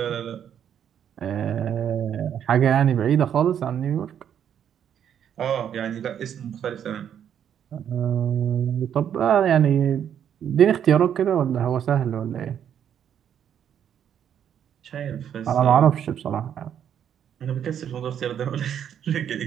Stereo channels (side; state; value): left; quieter; 9.1 dB